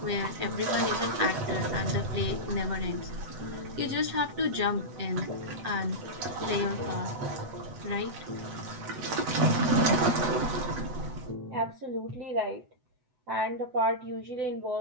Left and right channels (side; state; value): left; late; 8.0 ms